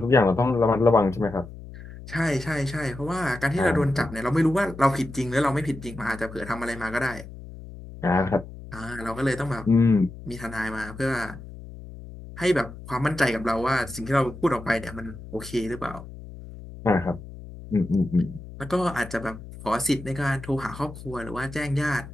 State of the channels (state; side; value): noise; left; hum, 14 dB below the sound